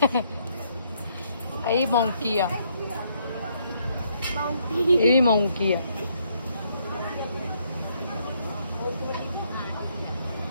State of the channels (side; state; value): both; inverted; correlation -0.72